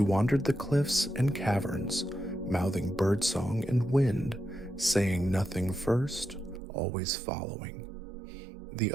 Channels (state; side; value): drops out; left; at 6.6 s